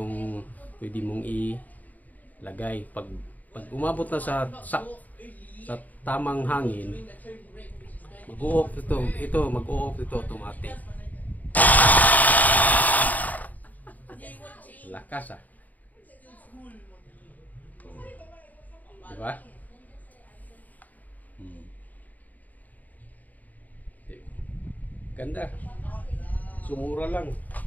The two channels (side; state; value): right; late; 0.078 ms